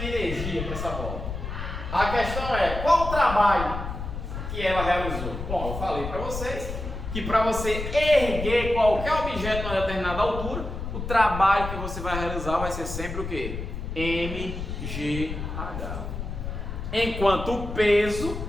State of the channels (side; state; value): left; noise; rumble, 6 dB below the sound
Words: energia para essa bola. A questão é, qual o trabalho que ela realizou? Bom, eu falei para vocês que para você erguer qualquer objeto a uma determinada altura, o trabalho que você vai realizar vai ser sempre o quê? MGH. Enquanto o peso,